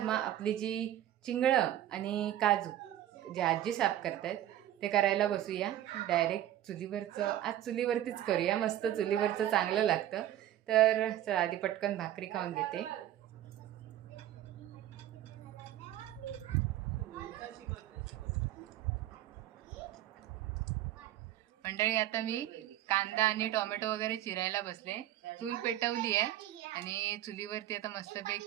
मग आपली जी चिंगळं आणि काजू जे आजी साफ करतायत ते करायला बसूया. डायरेक्ट चुलीवरचं, आज चुलीवरतीच करूया, मस्त चुलीवरचं चांगलं लागतं. तर चला आधी पटकन भाकरी खाऊन घेते. मंडळी आता मी कांदा आणि टोमॅटो वगैरे चिरायला बसले. चूल पेटवली आहे आणि चुलीवरती आता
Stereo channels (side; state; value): left; quieter; 12.8 dB